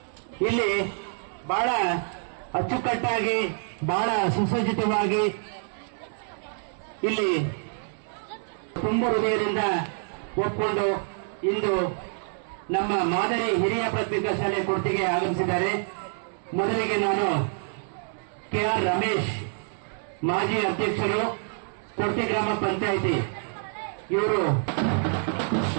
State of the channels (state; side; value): silent; left; 56 dB below the other